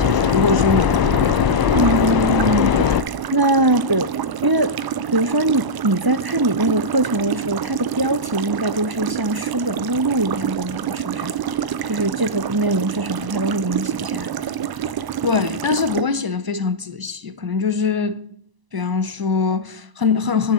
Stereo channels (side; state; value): left; late; 1.0 ms